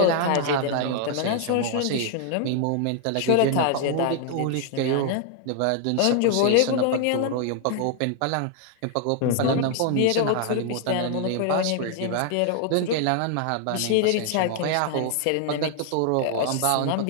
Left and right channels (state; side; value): different; both; correlation 0.00